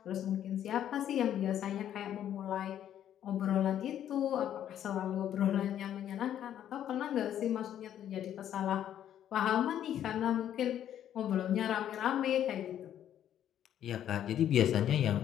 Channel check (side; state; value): right; quieter; 10.6 dB